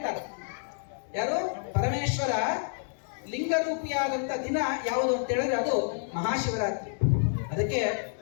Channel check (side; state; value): right; silent; 59 dB below the other